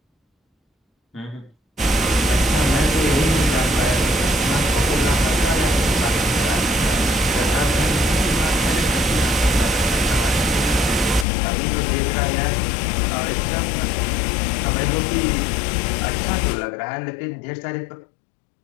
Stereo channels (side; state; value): right; drops out; at 11.2 s